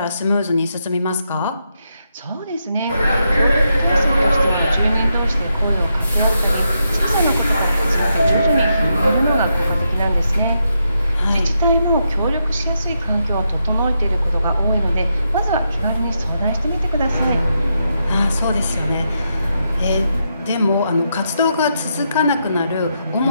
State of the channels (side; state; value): both; inverted; correlation -0.82